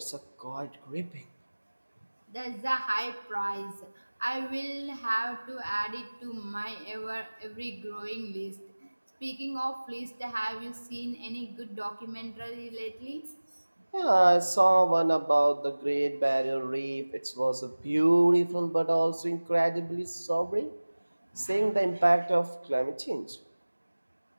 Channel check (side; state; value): both; inverted; correlation -1.00